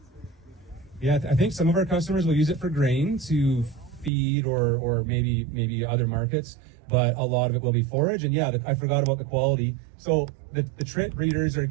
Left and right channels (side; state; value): left; drops out; at 4.1 s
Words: Yeah, I think some of our customers will use it for grain to feed or maybe other markets, but a lot of it will be forage. And yeah, I forgot about the quality. So the trit breeders are